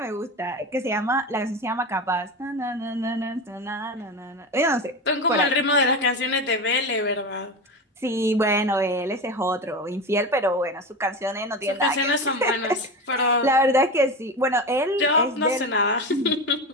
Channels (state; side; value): normal; both; correlation 0.23